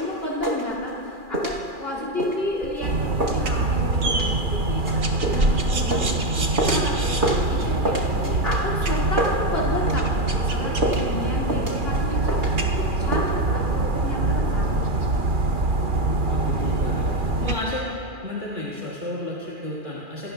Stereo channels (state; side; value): late; left; 2.4 ms